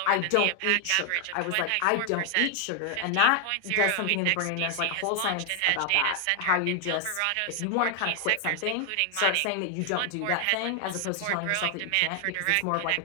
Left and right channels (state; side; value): different; both; correlation 0.00